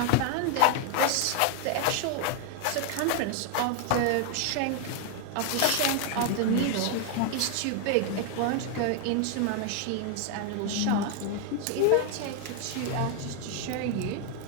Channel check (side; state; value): both; different; correlation 0.00